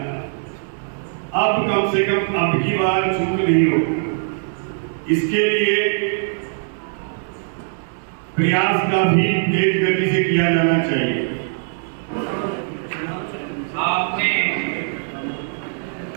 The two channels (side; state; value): left; silent; 65 dB below the other